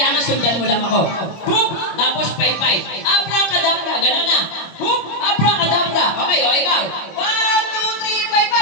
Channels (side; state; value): right; late; 25 ms